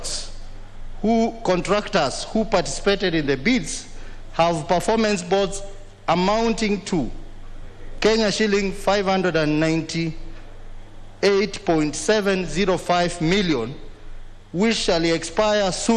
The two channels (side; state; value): both; identical; correlation 1.00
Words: who participated in the bids have performance boards amounting to Kenya shilling 598.705 million, which shall expire